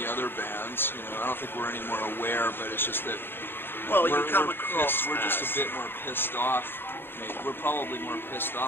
other bands. You know, I don't think we're any more aware, but it's just that well, we're just a bit more pissed off. We're probably more pissed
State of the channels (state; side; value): late; right; 0.10 ms